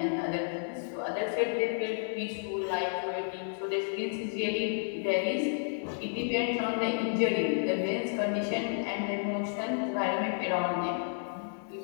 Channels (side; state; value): right; silent; digital silence